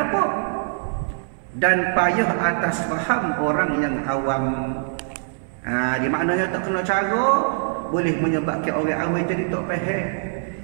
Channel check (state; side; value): silent; left; 63 dB below the other